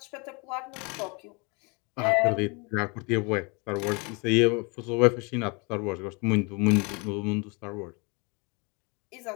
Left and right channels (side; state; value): right; quieter; 30.7 dB